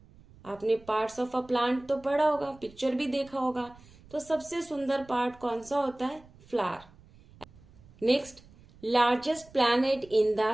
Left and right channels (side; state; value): right; noise; rumble, 24 dB below the sound